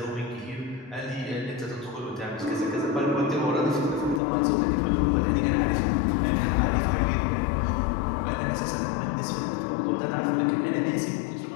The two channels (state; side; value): drops out; right; at 4.2 s